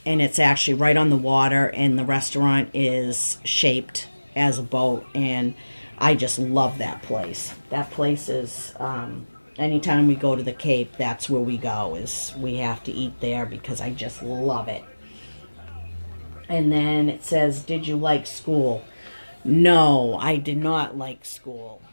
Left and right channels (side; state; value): both; inverted; correlation -1.00